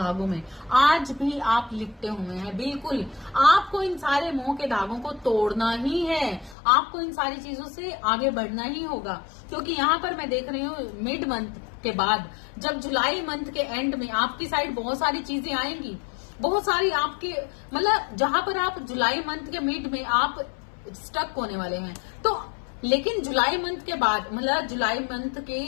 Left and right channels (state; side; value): drops out; right; at 6.6 s